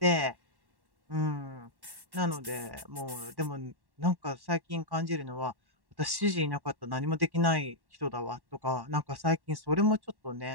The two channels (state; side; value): late; left; 1.1 ms